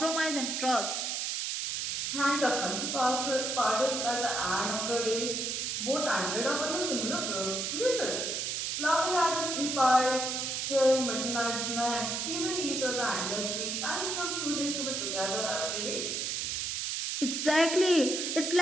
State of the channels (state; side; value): noise; right; hiss, 1 dB below the sound